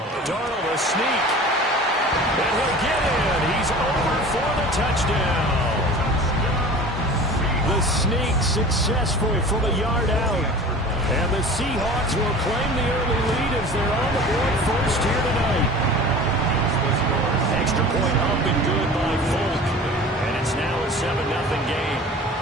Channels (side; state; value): both; normal; correlation 0.40